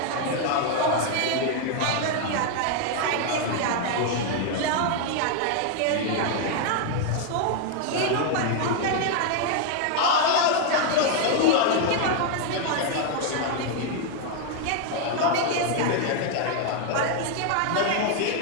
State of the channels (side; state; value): both; different; correlation 0.01